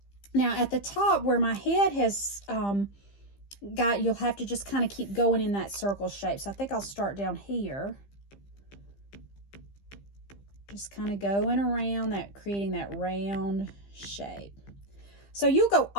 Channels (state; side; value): late; right; 15 ms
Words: Now at the top where my head has you'll have to just kind of keep going in that circle shape. So I think I'll start down here. Just kind of going around that, creating that round shape. So you'll go